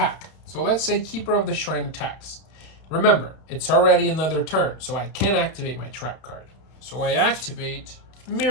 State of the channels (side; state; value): right; late; 31 ms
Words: So let's say Keeper of the Shrine attacks. Remember, it's already another turn, so I can activate my trap card. So I activate